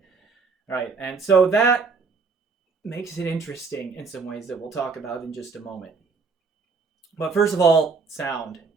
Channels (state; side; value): quieter; left; 4.7 dB